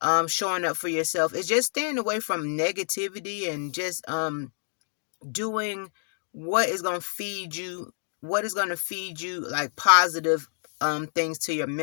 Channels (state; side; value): silent; right; digital silence